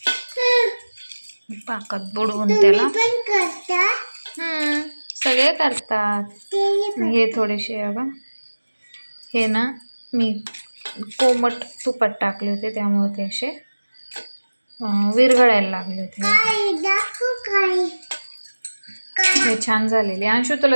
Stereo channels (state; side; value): inverted; both; correlation -1.00